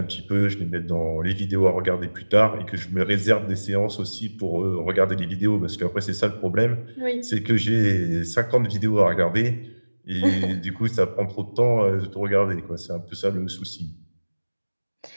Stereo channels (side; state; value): both; inverted; correlation -1.00